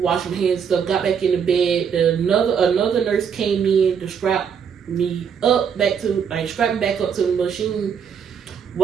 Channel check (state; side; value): quieter; left; 7.2 dB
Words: my hands and stuff, got back in the bed, another nurse came in to strap me up back to, strap me back up to the machine.